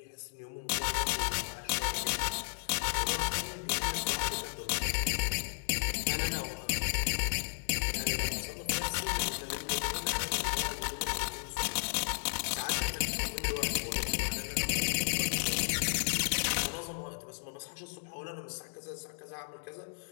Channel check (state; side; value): silent; right; digital silence